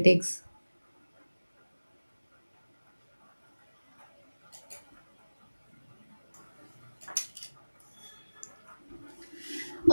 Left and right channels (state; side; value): inverted; both; correlation -1.00